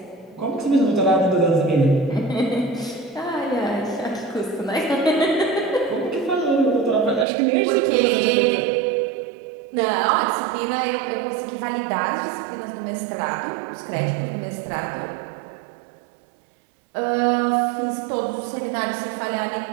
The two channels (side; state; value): left; drops out; at 7.2 s